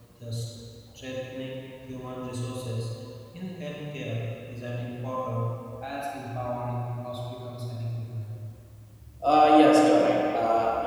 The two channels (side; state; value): both; identical; correlation 1.00